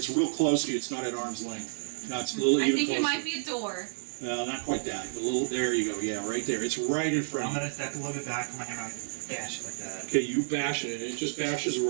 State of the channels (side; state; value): left; silent; 58 dB below the other